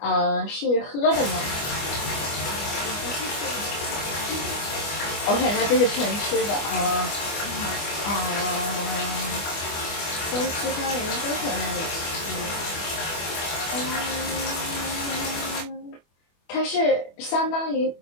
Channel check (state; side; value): late; right; 24 ms